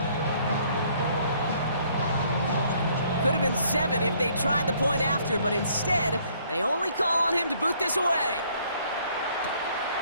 Could have been 7 if they tried the point after, but instead, they only call on him to boot this away.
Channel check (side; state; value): both; inverted; correlation -0.63